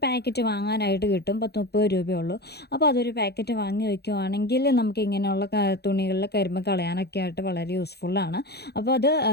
പാക്കറ്റ് വാങ്ങാനായിട്ട് കിട്ടും. 10-30 രൂപയുള്ളൂ. അപ്പോൾ അതൊരു പാക്കറ്റ് വാങ്ങി വയ്ക്കുവാണെങ്കിൽ നമുക്ക് ഇങ്ങനെയുള്ള തുണികളിൽ കരിമ്പ് കളയാനൊക്കെ ആയിട്ട് വളരെ യൂസ്ഫുള്ളാണ്. അപ്പോൾ അത്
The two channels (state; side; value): late; right; 0.48 ms